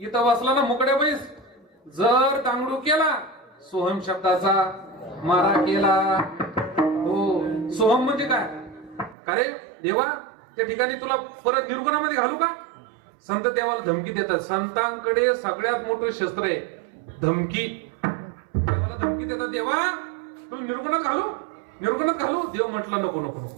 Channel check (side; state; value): left; drops out; at 9.2 s